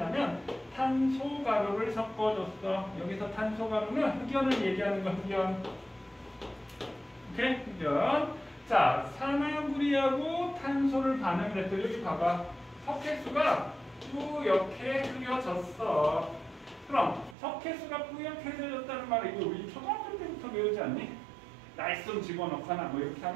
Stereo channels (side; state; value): left; drops out; at 17.4 s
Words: 탄소가루를 섞어줬어. 여기서 탄소가루는 흑연을 얘기하는 거, 흑연. 오케이? 흑연. 자, 산화구리하고 탄소를 반응을 했더니 여기 봐봐. 석회수가 뿌옇게 흐려졌어. 그럼 석회수가 뿌옇게 흐려졌다는 말은 이거 우리 초등학교 때부터 배우지 않니? 날쌘 집어넣거나 뭐 이렇게